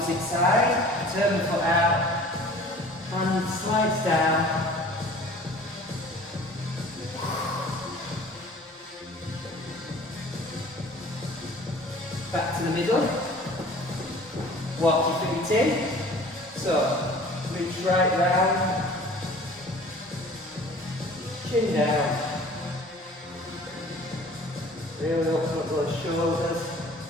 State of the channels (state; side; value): normal; both; correlation 0.47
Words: side, turn the foot out. Hand slides down. Back to the middle. Walk your feet in. So, reach right round. Chin down. Really open up those shoulders.